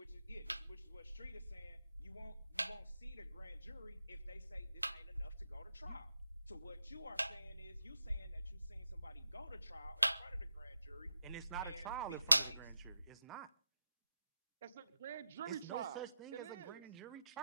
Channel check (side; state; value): both; inverted; correlation -0.88